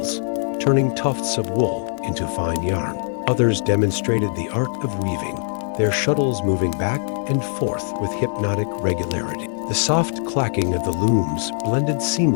turning tufts of wool into fine yarn. Others demonstrated the art of weaving, their shuttles moving back and forth with hypnotic regularity. The soft clacking of the looms blended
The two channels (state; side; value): silent; right; 64 dB below the other